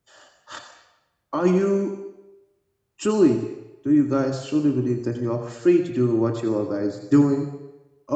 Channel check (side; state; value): both; identical; correlation 1.00